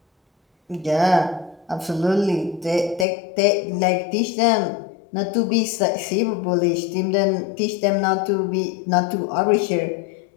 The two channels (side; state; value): right; drops out; at 3.1 s